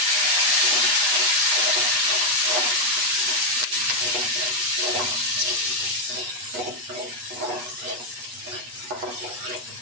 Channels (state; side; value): late; left; 8.2 ms